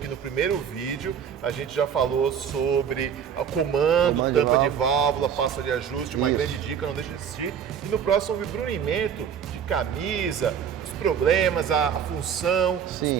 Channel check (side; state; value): left; quieter; 7.9 dB